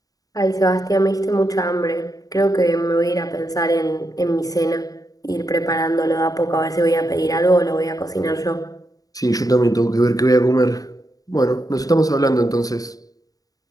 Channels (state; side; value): late; right; 0.18 ms